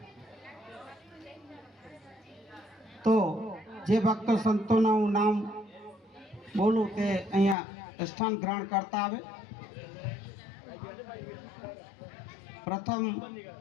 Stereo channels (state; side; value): drops out; right; at 7.6 s